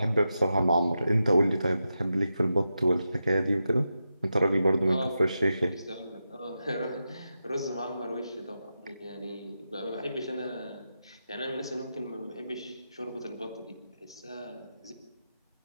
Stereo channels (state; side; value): inverted; both; correlation -0.89